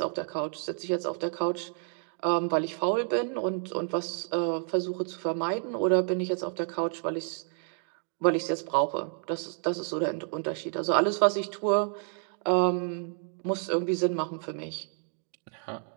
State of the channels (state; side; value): silent; left; 58 dB below the other